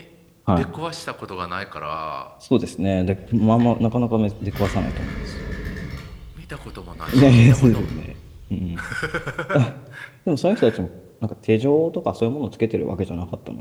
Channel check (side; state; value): both; identical; correlation 1.00